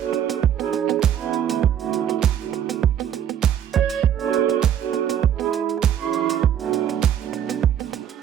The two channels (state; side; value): quieter; left; 9.6 dB